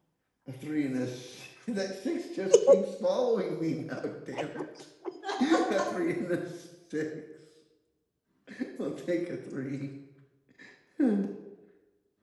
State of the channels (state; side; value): identical; both; correlation 1.00